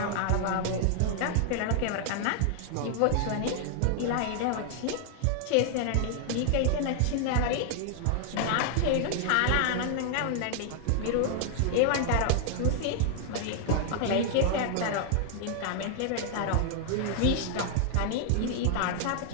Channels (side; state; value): both; different; correlation 0.00